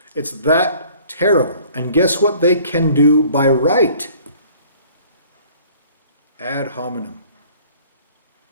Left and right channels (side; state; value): both; inverted; correlation -0.53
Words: It's that terrible. And guess what they can do by right? Ad hominem.